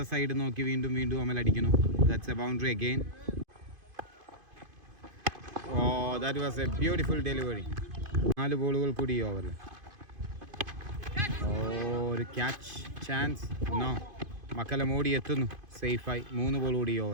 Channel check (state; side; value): late; left; 2.5 ms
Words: സൈഡ് നോക്കി വീണ്ടും അമൽ അടിക്കുന്നു. That's a boundary again. That was a beautiful delivery. 4 ബോളുകൾ കൂടി ഈ ഓവറിൽ. ഒരു ക്യാച്ച് ചാൻസ്. നോ. മക്കല്ലം ഓടി എത്തുന്നു സേഫായി. 3 ബോൾ കൂടി ഈ